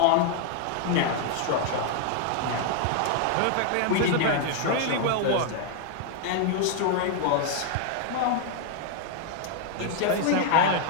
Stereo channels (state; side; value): different; both; correlation 0.00